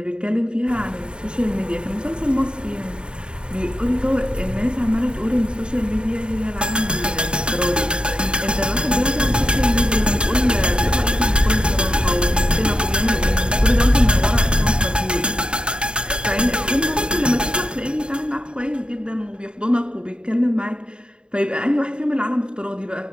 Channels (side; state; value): left; late; 0.050 ms